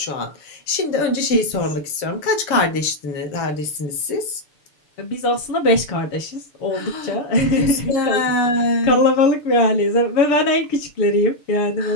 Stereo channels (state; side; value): late; right; 6.8 ms